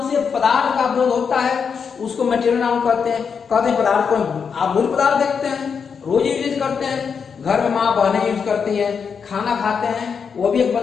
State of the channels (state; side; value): quieter; right; 6.3 dB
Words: से पदार्थ का बोध होता है उसको material noun कहते हैं। कहते हैं पदार्थ को आप मूल पदार्थ देखते हैं, रोज यूज करते हैं, घर में माँ बहनें यूज करती हैं, खाना खाते हैं, वो भी एक